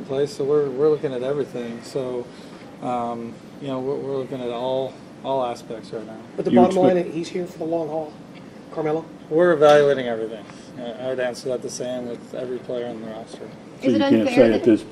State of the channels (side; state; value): both; identical; correlation 1.00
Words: place, so we're looking at everything. So, you know, we're looking at all aspects right now. But the bottom line, he's here for the long haul. Carmelo? We're evaluating everything. I would answer that the same with every player on the roster. So you can't say at this